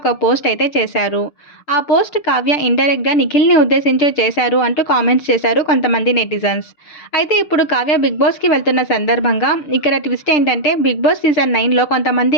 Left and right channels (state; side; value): late; right; 6.7 ms